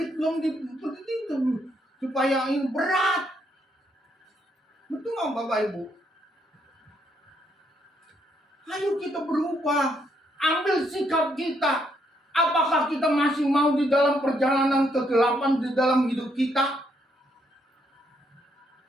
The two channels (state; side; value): normal; both; correlation 0.74